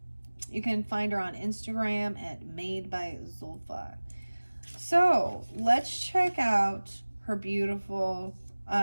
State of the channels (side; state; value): both; inverted; correlation -1.00